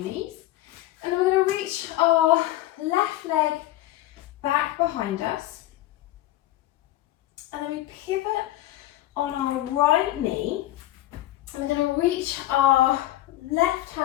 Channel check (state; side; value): quieter; right; 15.0 dB